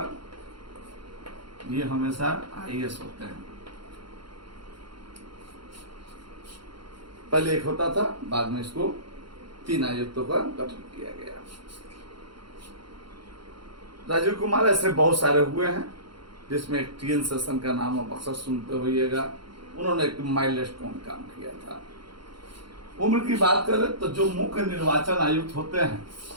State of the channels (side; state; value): left; late; 0.73 ms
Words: ये हमेशा IAS होते हैं। पहले एक होता था, बाद में इसको 3 आयुक्तों का गठन किया गया। राजीव कुमार ऐसे बहुत सारे हुए हैं, जिसमें एक TN सेशन का नाम आप अक्सर सुनते होइएगा। उन्होंने एक माइलस्टोन काम किया था। उम्र की बात करें तो जो मुख्य निर्वाचन आयुक्त होते हैं,